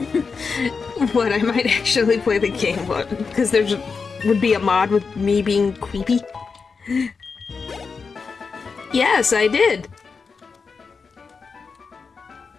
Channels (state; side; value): quieter; right; 5.1 dB